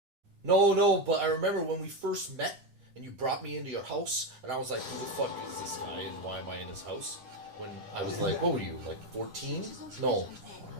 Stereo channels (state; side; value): late; left; 10 ms